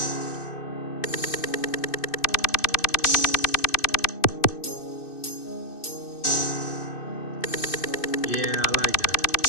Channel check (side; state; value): right; late; 2.6 ms